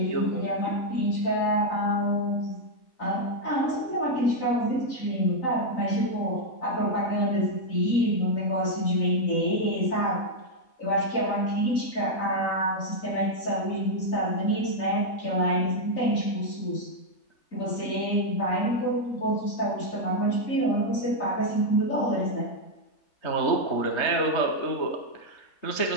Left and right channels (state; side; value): late; right; 3.9 ms